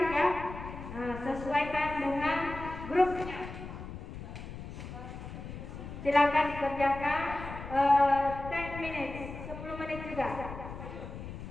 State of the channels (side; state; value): left; noise; rumble, 10 dB below the sound